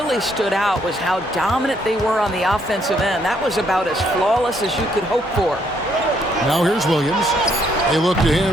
stood out was how dominant they were on the offensive end. That was about as flawless as you could hope for. Now here's Williams. They look to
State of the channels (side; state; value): both; normal; correlation 0.70